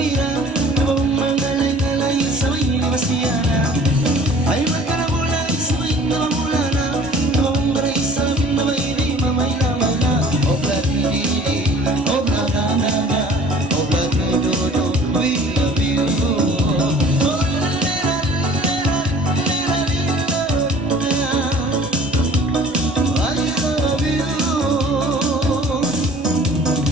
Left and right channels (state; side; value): normal; both; correlation 0.49